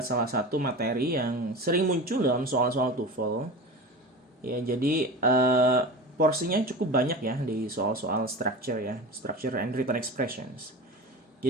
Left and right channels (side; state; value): both; normal; correlation 0.30